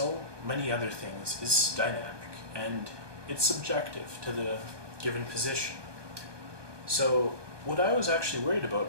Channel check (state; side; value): late; left; 1.2 ms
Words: many other things, is dynamic, and it's subjective to the given position. So what I was actually worried